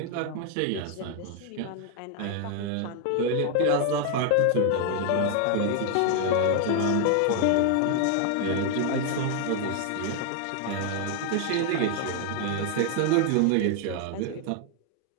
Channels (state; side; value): different; both; correlation 0.00